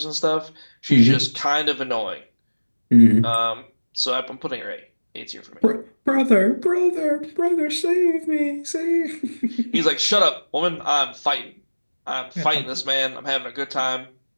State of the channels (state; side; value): inverted; both; correlation -1.00